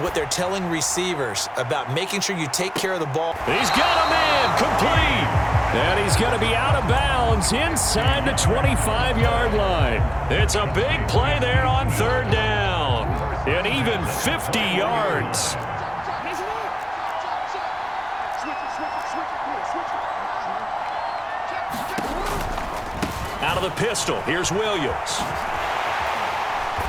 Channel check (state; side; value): identical; both; correlation 1.00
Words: what they're telling receivers about making sure you take care of the ball. He's got a man, complete. And he's going to be out of bounds inside the 25-yard line. It's a big play there on 3rd down. And even 50 yards. Out of the pistol, here's Williams.